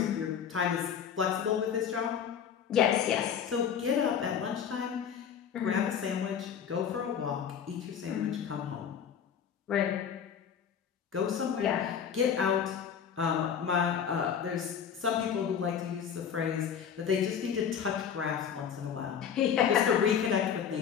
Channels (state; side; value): quieter; right; 7.9 dB